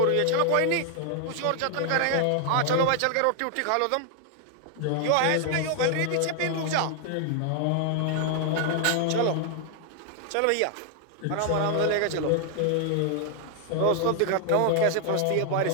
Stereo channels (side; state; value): both; different; correlation 0.00